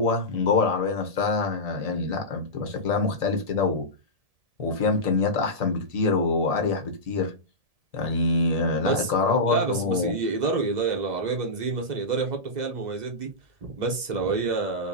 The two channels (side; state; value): left; late; 2.0 ms